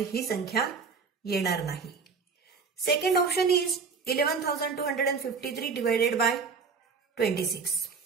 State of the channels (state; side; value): quieter; left; 5.2 dB